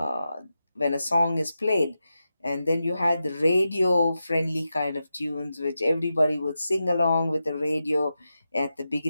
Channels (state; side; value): inverted; both; correlation -0.90